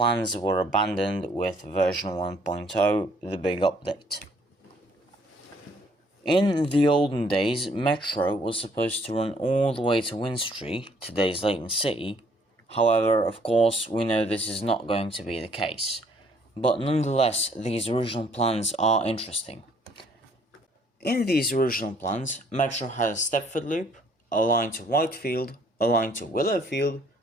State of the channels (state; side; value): normal; both; correlation 0.63